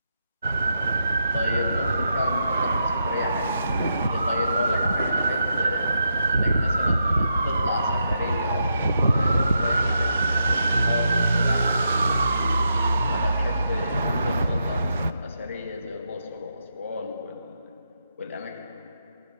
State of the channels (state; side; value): inverted; both; correlation -0.83